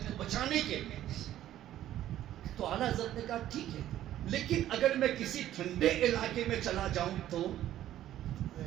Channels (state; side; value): quieter; left; 12.7 dB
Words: کو بچانے کے لیے۔ تو اعلیٰ حضرت نے کہا ٹھیک ہے، لیکن اگر میں کسی ٹھنڈے علاقے میں چلا جاؤں تو